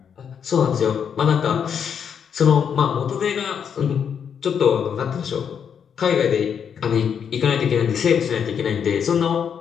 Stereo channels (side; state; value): right; quieter; 7.5 dB